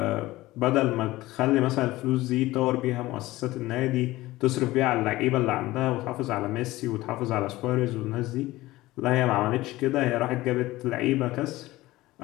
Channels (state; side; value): quieter; right; 18.0 dB